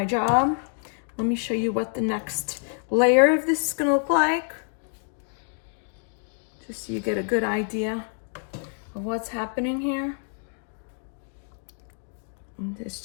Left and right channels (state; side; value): silent; right; 55 dB below the other